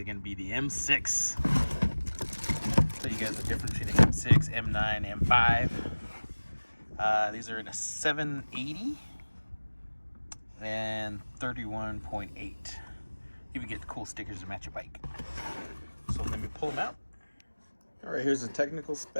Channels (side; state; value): both; inverted; correlation -1.00